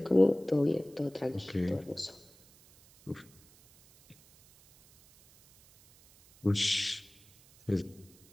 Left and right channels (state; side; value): noise; right; hiss, 27 dB below the sound